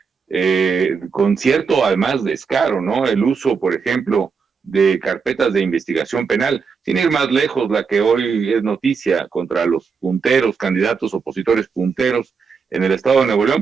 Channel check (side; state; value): left; quieter; 5.6 dB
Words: con cierto además descaro, ¿no? El uso, por ejemplo, de carpetas de investigación penal, sin ir más lejos, la que hoy es noticia contra los punteros, candidatos opositores punteros en el estado de Nuevo